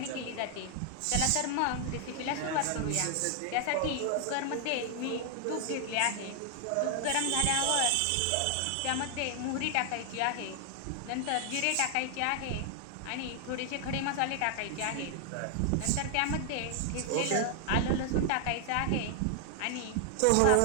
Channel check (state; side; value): different; both; correlation 0.00